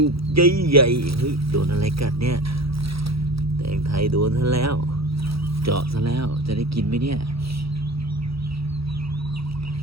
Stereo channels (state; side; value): late; left; 0.76 ms